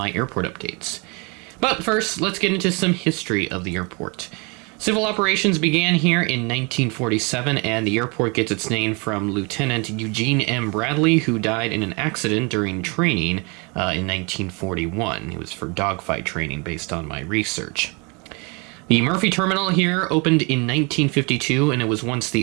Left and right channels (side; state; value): left; quieter; 30.7 dB